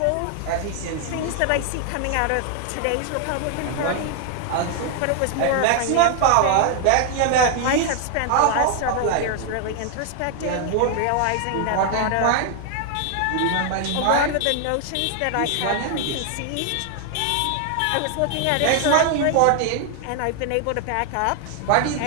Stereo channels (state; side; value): different; both; correlation 0.00